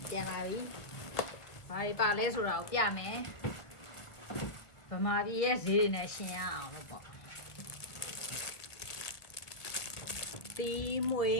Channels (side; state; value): right; late; 1.4 ms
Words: ပြန်လာပြီဘာတွေပါလဲဆိုတော့ပြမယ်ဗမာပြည်ရဲ့ဈေးတွေနဲ့ရှင်ရအောင်လို့ပေါ့တီးမွေ